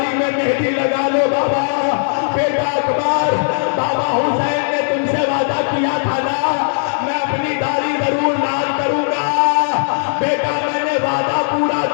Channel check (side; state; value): right; silent; digital silence